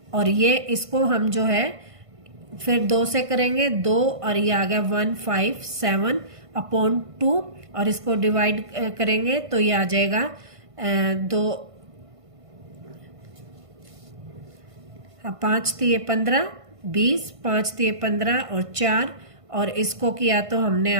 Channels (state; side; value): late; left; 1.5 ms